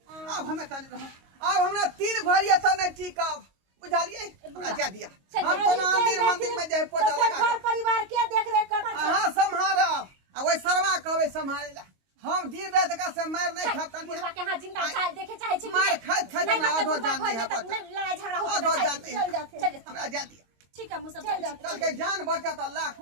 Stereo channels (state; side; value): late; left; 22 ms